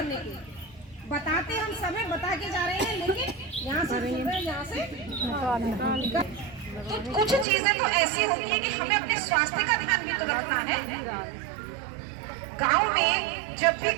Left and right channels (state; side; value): drops out; left; at 7.5 s